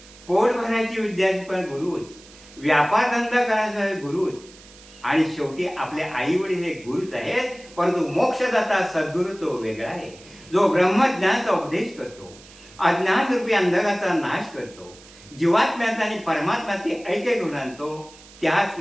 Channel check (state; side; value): noise; right; hiss, 22 dB below the sound